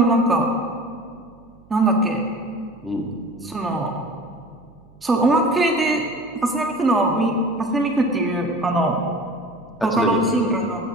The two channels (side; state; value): right; noise; hum, 27 dB below the sound